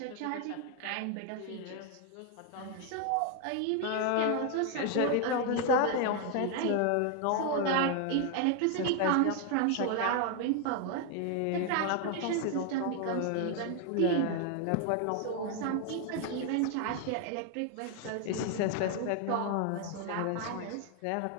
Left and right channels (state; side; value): different; both; correlation 0.01